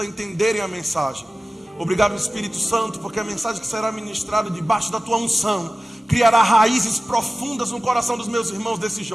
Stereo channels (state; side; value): normal; both; correlation 0.96